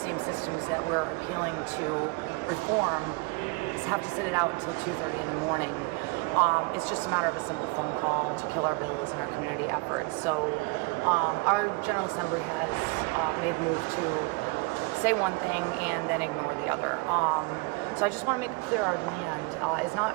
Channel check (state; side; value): quieter; left; 27.0 dB